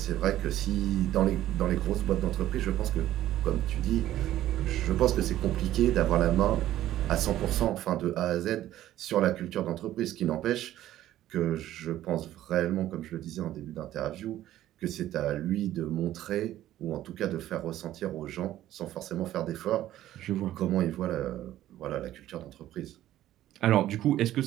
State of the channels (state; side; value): quieter; left; 13.4 dB